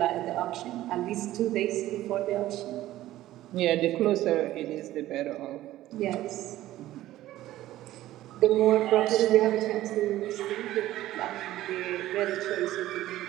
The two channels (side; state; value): left; quieter; 14.8 dB